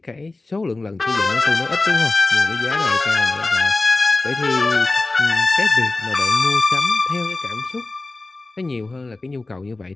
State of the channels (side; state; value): right; quieter; 3.2 dB